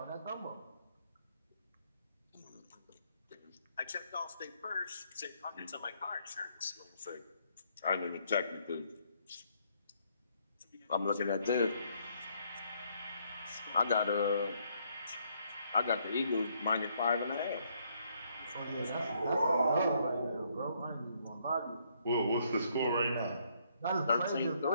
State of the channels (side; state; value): both; inverted; correlation -0.70